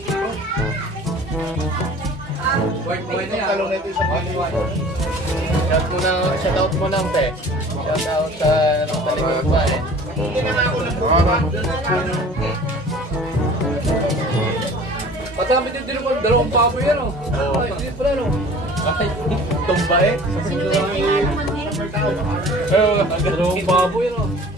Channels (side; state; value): both; normal; correlation 0.46